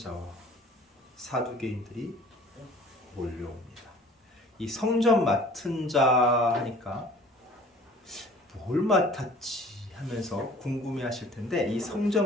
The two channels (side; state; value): both; normal; correlation 0.49